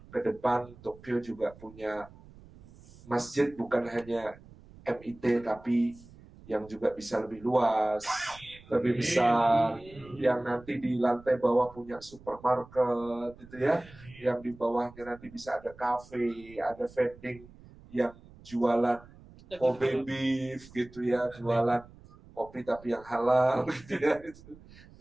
ke depan Tokyo juga punya masjid, bukan hanya MIT, tapi yang juga bisa lebih luas, lebih besar, yang nanti di lantai bawah punya supermarket, gitu ya, yang di bawahnya nanti bisa ada cafe, ada vending yang jualan Kobe beef gitu ya, jualan kopi tapi yang halal gitu ya,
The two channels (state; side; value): noise; right; rumble, 22 dB below the sound